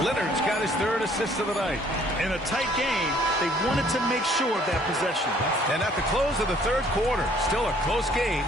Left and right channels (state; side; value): normal; both; correlation 0.60